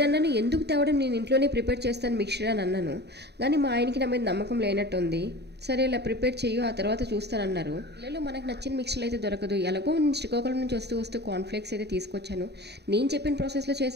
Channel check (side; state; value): left; late; 0.48 ms